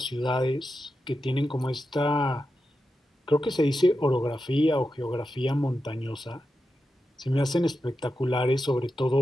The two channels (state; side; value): normal; both; correlation 0.89